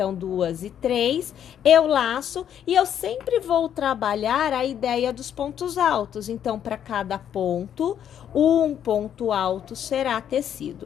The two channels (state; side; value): quieter; right; 9.5 dB